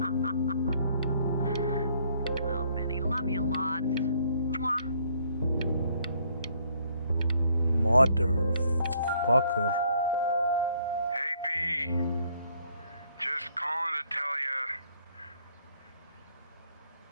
Well, Benny, love you lots. Mwah. Motherfucker. Hey, B. Just calling to tell you.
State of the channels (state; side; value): inverted; both; correlation -0.66